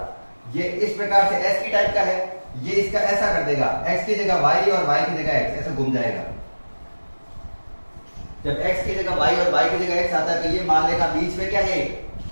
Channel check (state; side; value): inverted; both; correlation -1.00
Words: ये इस प्रकार से एस की टाइप का है, ये इसका ऐसा कर देगा, x की जगह y और y की जगह x, ऐसा घूम जाएगा। जब x की जगह y और y की जगह x आता है तो ये मान लेगा बीच में क्या है,